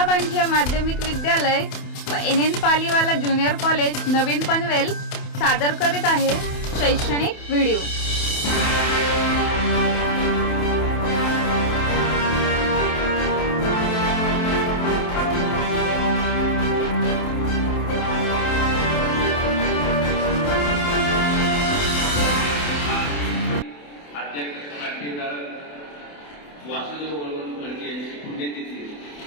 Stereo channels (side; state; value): right; late; 28 ms